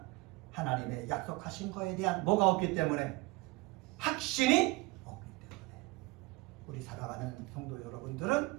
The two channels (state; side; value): quieter; left; 23.3 dB